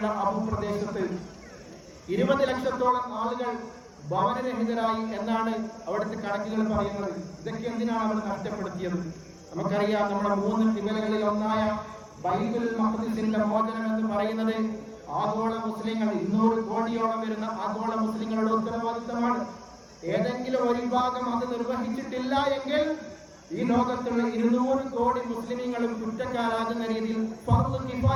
ആ ഭൂപ്രദേശത്ത് 20 ലക്ഷത്തോളം ആളുകൾ ഭവനരഹിതരായി എന്നാണ് അവിടുത്തെ കണക്കുകൾ പറയുന്നത്. ഇതൊക്കെ എന്തിനാണ് അവർ നഷ്ടപ്പെടുത്തിയത്? നമുക്കറിയാം, നമ്മുടെ 3 ഖിബലകളിൽ ഒന്നായ ബൈത്തുൽ മഖ്ദിസിന്റെ മോചനം എന്ന് പറയുന്നത് ആഗോള മുസ്ലിങ്ങൾ, 200 കോടിയോളം വരുന്ന ആഗോള മുസ്ലിങ്ങളുടെ ഉത്തരവാദിത്തമാണ്. ഏതെങ്കിലും ഒരു വിഭാഗം അത് നിർവഹിച്ചിട്ടില്ല എങ്കിൽ ഈ ലോകത്തുള്ള 200 കോടി മുസ്ലിമീങ്ങളും കുറ്റക്കാരാകുന്ന രീതിയിൽ ഫർദ്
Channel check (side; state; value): both; identical; correlation 1.00